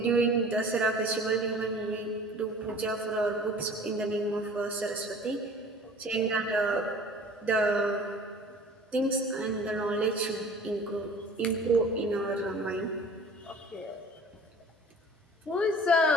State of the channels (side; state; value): both; normal; correlation 0.46